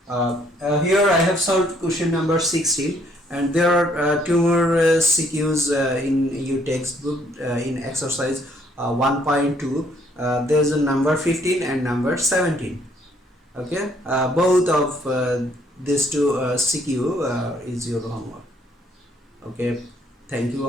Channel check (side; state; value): both; normal; correlation 0.66